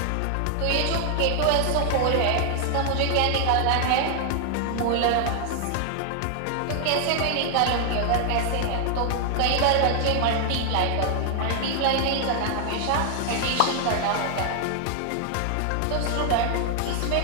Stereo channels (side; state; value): both; different; correlation 0.00